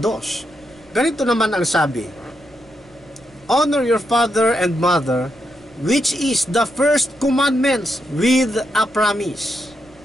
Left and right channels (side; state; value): right; noise; rumble, 28 dB below the sound